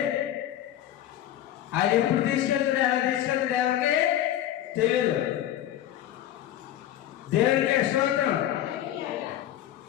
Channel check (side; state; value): right; quieter; 12.2 dB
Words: ఆయన ఎప్పుడు తీసుకెళ్తాడు, ఎలా తీసుకెళ్తాడు ఎవరికి తెలియదు. దేవుడికే స్తోత్రం.